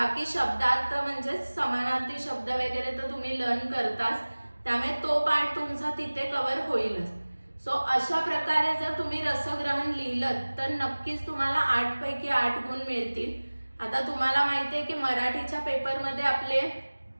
शब्दार्थ म्हणजे समानार्थी शब्द वगैरे तर तुम्ही लर्न करताच, त्यामुळे तो पार्ट तुमचा तिथे कव्हर होईलच. सो अशा प्रकारे जर तुम्ही रसग्रहण लिहिलं तर नक्कीच तुम्हाला 8 पैकी 8 गुण मिळतील. आता तुम्हाला माहिती आहे की मराठीच्या पेपरमध्ये आपले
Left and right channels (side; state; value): both; inverted; correlation -1.00